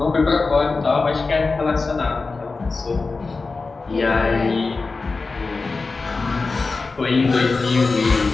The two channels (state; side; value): quieter; right; 4.0 dB